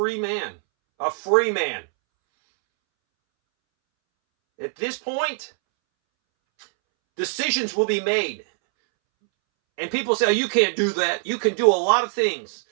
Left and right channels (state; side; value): silent; left; 64 dB below the other